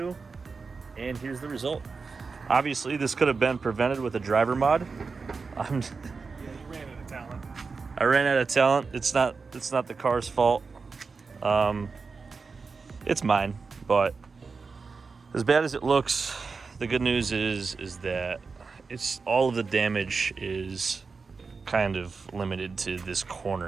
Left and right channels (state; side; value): quieter; left; 4.7 dB